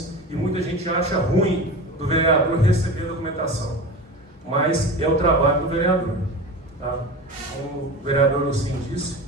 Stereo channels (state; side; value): normal; both; correlation 0.30